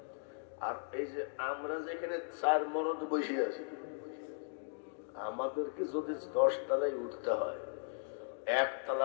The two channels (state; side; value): silent; right; digital silence